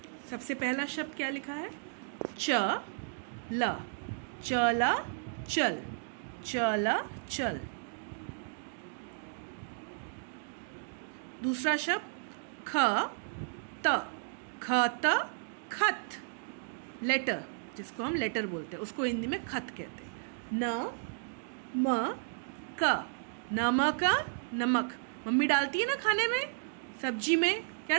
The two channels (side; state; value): left; silent; digital silence